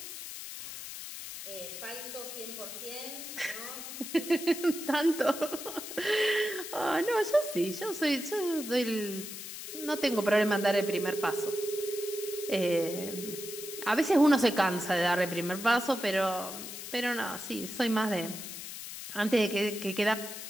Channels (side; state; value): left; noise; hiss, 9 dB below the sound